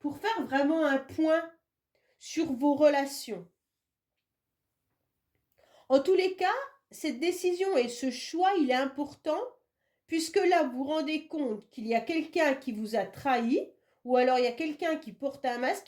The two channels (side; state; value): both; identical; correlation 1.00